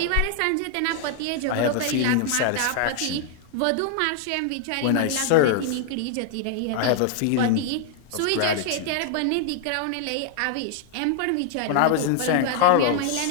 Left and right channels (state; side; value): different; both; correlation 0.00